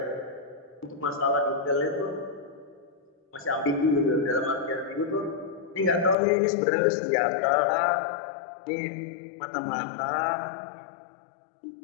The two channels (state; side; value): drops out; right; at 6.2 s